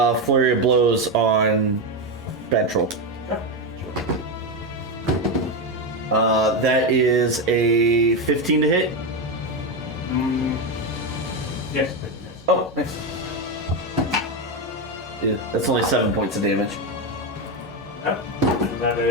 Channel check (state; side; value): normal; both; correlation 0.11